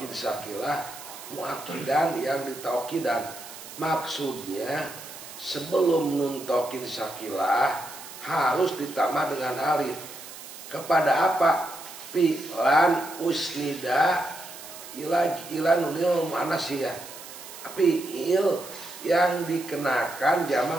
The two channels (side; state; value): right; noise; hiss, 14 dB below the sound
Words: sakilah, muakkidan yang ditaukidan. Maksudnya sebelum nun taukid sakilah harus ditambah dengan alif. Kepada apa? Fi'lan usnida ila nunil mu'annas ya. Fi'il yang dikenakan